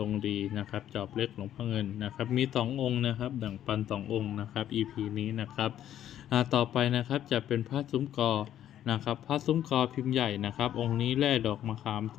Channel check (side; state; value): right; quieter; 11.2 dB